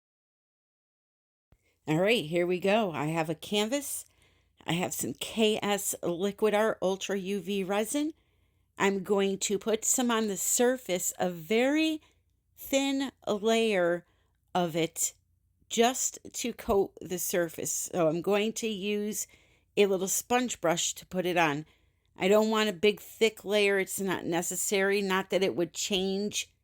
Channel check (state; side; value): identical; both; correlation 1.00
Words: All right, here we go. I have a canvas. I have some KS Liquid Art Ultra UV resin. I'm going to put some on the surface, a very thin layer of it, just to coat the surface. So I'm going to use a little sponge brush to put it on. I don't want a big thick layer. It's not necessary. Not that it would change